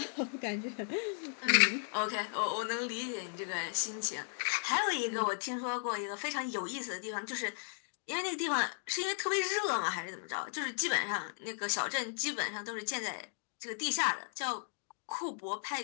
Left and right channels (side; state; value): right; silent; digital silence